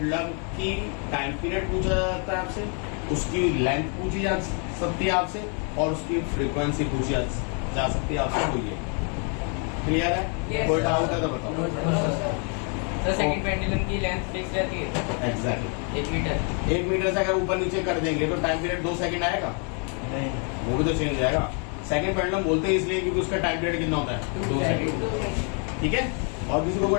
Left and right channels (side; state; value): right; quieter; 39.0 dB